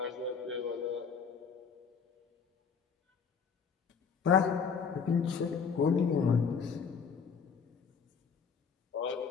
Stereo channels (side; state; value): right; quieter; 6.2 dB